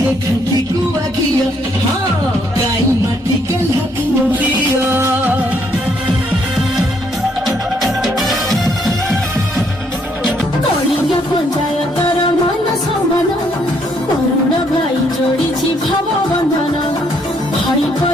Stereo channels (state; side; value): normal; both; correlation 0.70